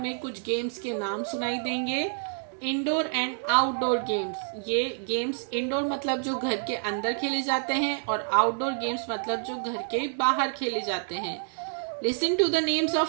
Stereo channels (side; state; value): left; silent; digital silence